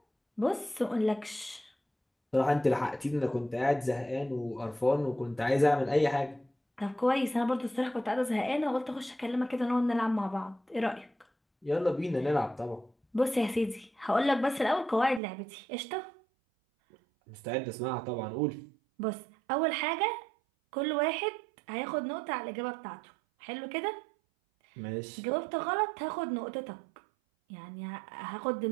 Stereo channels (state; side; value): drops out; left; at 15.2 s